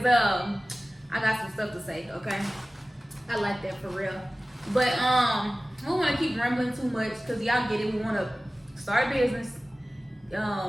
I got some stuff to say. Okay, I like that for real. But we don't want to keep rambling too much, because y'all get it. We want to start a business,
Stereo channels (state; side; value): normal; both; correlation 0.97